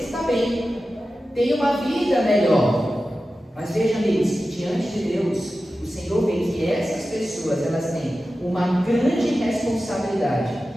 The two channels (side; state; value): both; normal; correlation 0.94